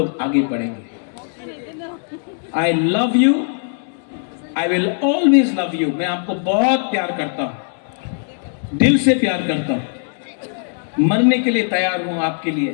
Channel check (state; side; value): silent; right; 66 dB below the other